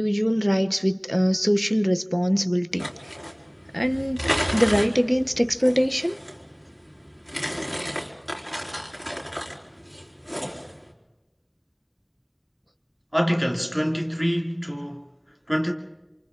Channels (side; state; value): both; identical; correlation 1.00